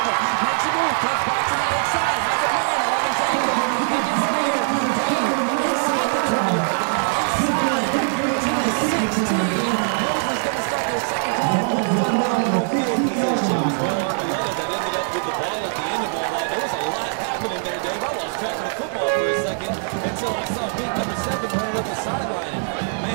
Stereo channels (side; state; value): left; silent; digital silence